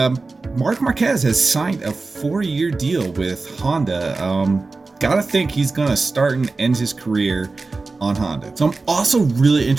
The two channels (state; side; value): quieter; left; 3.8 dB